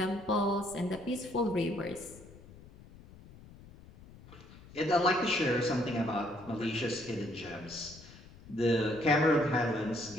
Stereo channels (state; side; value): noise; left; rumble, 20 dB below the sound